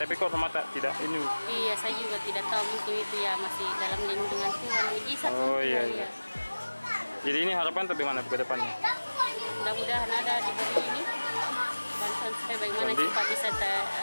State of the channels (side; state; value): both; inverted; correlation -1.00